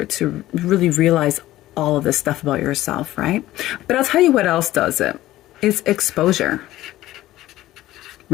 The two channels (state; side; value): quieter; right; 15.5 dB